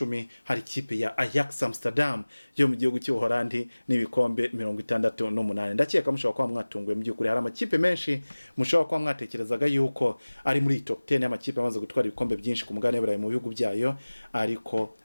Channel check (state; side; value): inverted; both; correlation -1.00